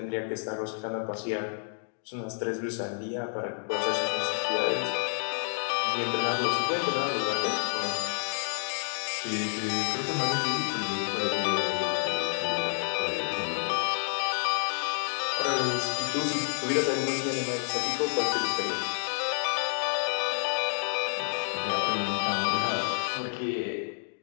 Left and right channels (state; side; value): silent; right; digital silence